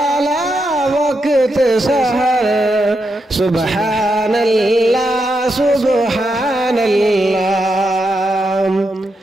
وقت سحر، سبحان اللہ سبحان اللہ،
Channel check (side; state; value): both; normal; correlation 0.84